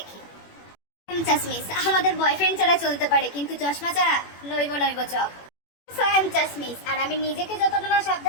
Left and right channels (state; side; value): late; right; 21 ms